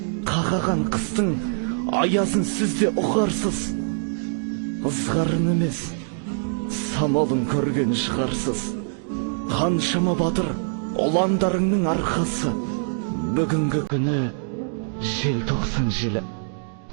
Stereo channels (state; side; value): silent; left; digital silence